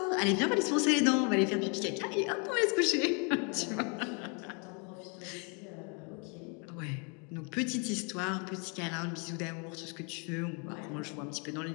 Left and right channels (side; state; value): right; quieter; 35.5 dB